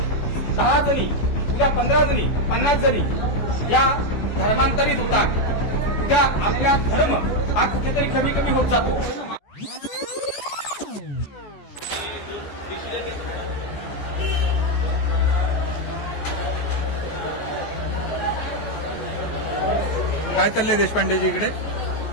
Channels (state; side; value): late; right; 14 ms